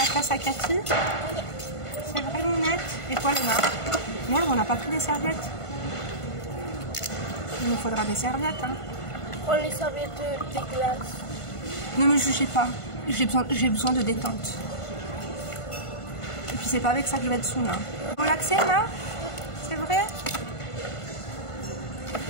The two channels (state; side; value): late; right; 1.5 ms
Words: classe à Cathy? Oui. C'est vrai, Mounette? Et toi, Emma? Merde, on n'a pas pris des serviettes. Il nous faudra des serviettes, hein. Prends les serviettes des glaces. Ne me jugez pas. J'ai besoin de détente. Et puis c'est pas avec ça que je vais être saoule, hein. Relaxée, Emma? C'est vrai?